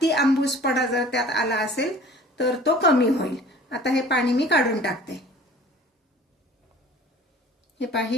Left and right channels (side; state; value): both; normal; correlation 0.46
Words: आंबूसपणा जर त्यात आला असेल तर तो कमी होईल. आता हे पाणी मी काढून टाकते. हे पहा,